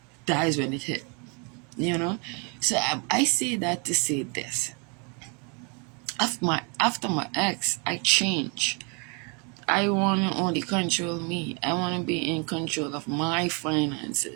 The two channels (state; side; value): quieter; left; 34.0 dB